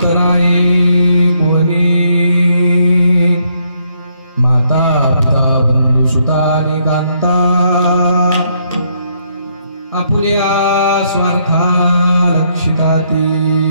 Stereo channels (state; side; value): inverted; both; correlation -0.72